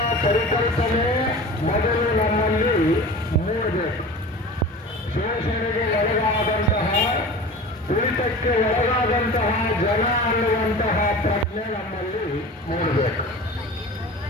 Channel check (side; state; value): both; normal; correlation 0.36